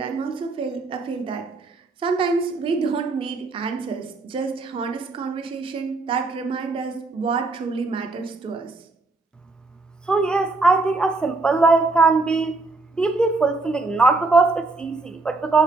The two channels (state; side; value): quieter; left; 3.5 dB